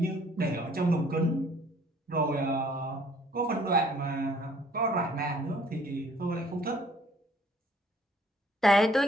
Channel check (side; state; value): both; normal; correlation 0.59